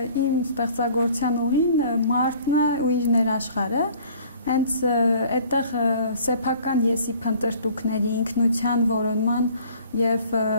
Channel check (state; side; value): inverted; both; correlation -0.52